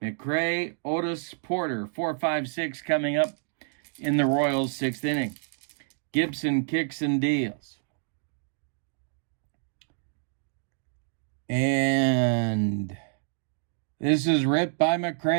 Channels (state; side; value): silent; left; digital silence